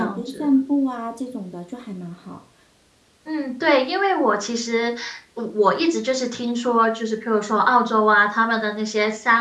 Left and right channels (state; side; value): identical; both; correlation 1.00